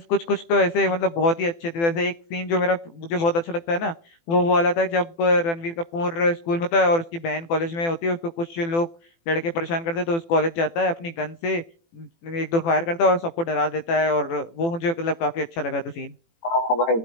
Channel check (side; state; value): right; late; 18 ms